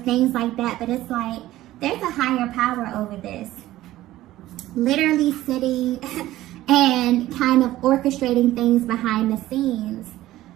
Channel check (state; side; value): quieter; left; 15.4 dB